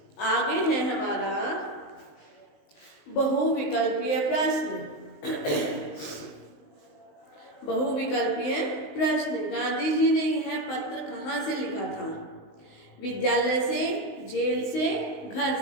आगे है हमारा बहुविकल्पीय प्रश्न। बहुविकल्पीय प्रश्न, गांधी जी ने यह पत्र कहाँ से लिखा था? विद्यालय से, जेल से, घर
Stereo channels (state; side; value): late; right; 19 ms